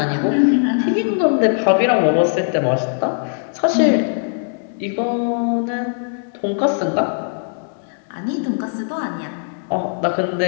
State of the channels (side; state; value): right; silent; digital silence